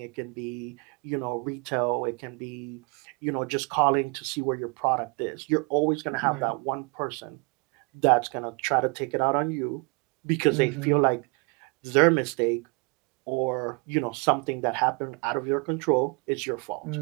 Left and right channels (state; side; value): quieter; left; 32.0 dB